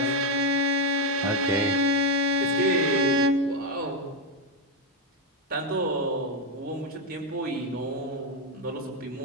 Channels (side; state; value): both; normal; correlation 0.05